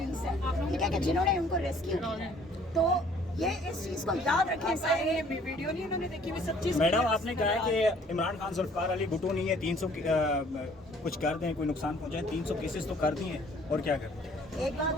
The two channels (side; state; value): both; normal; correlation 0.57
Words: ہے, ٹھیک ہے, کہ جنہوں نے ان کو ریسکیو کیا. تو یہ اس چیز کو یاد رکھیں سارے. ویڈیو نہیں انہوں نے دیکھی ہوئی, سب چیز. میڈم آپ نے کہا ہے کہ عمران خان ذوالفقار علی بھٹو نہیں ہے, 300 کچھ کر دیں, کوئی نقصان پہنچائے, 300 کیسز تو کر دیے, اور کیا کریں؟ ایک